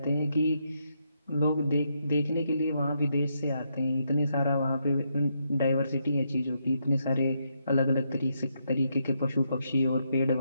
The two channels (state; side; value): inverted; both; correlation -0.79